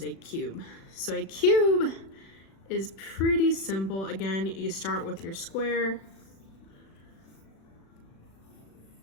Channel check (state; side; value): late; right; 36 ms